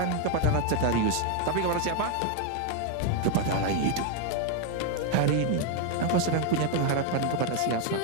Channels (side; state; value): both; different; correlation 0.01